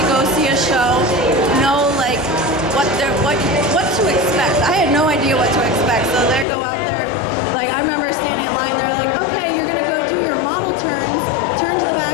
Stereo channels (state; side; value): drops out; right; at 6.5 s